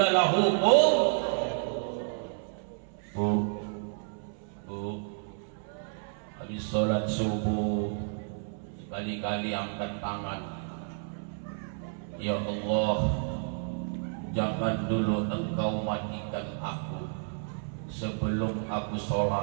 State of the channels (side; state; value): left; silent; 57 dB below the other